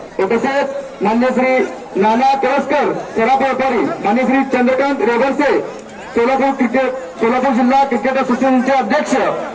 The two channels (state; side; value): identical; both; correlation 1.00